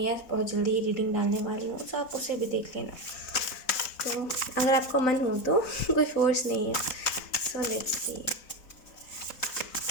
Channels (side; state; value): right; late; 4.1 ms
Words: बहुत जल्दी ही रीडिंग डालने वाली हूँ, तो आप उसे भी देख लेना। तो अगर आपको मन हो तो कोई फोर्स नहीं है। So let's see.